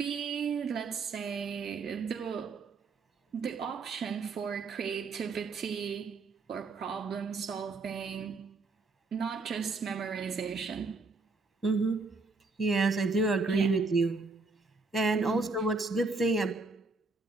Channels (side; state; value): left; quieter; 3.9 dB